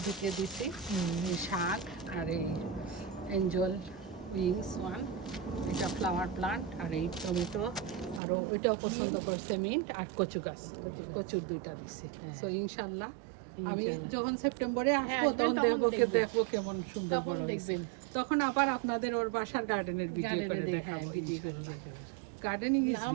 ঢুকে দিছি, এই শাক আর এই এঞ্জেল উইংস ওয়ান, এটা ফ্লাওয়ার প্লান্ট, আর এই টমেটো, আর ওইটাও পছন্দ করছে মিন্ট, আর কচু গাছ, কচুর দুইটা দিছি। সো ইনশাল্লাহ আমি যখন সেপ্টেম্বরে আসবো তখন দেখবো কেমন সুন্দর বড় দেখবেন, তখন আবার আপনাদের ওর বাসার গার্ডেনের ভিডিও করে দেখাবো। Gardening is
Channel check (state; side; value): drops out; left; at 8.2 s